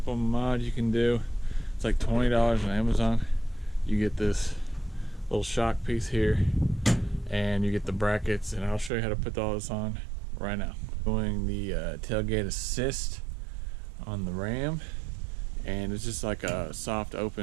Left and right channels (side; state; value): left; drops out; at 8.9 s